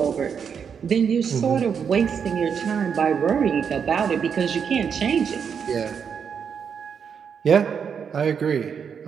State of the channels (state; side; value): quieter; left; 7.0 dB